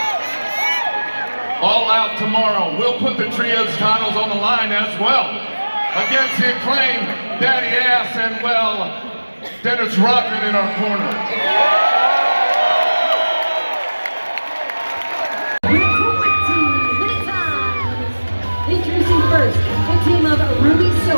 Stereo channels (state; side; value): inverted; both; correlation -1.00